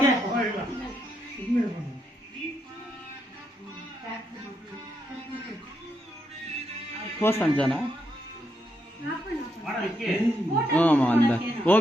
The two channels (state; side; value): normal; both; correlation 0.79